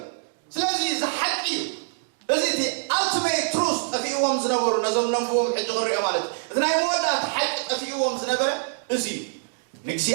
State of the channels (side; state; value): left; silent; digital silence